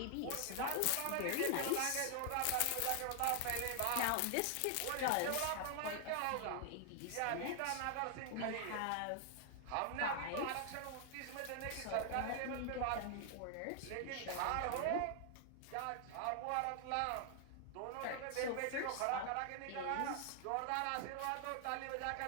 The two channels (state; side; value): different; both; correlation 0.00